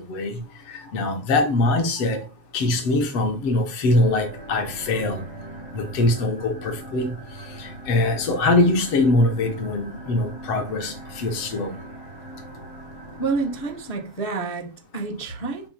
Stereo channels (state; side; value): late; right; 7.2 ms